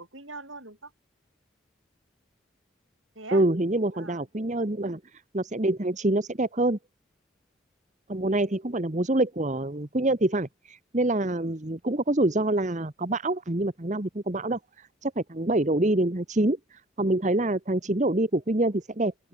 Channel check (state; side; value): normal; both; correlation 0.49